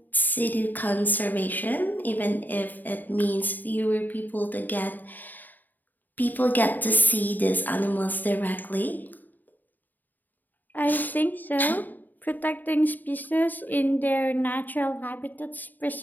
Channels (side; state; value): right; late; 0.087 ms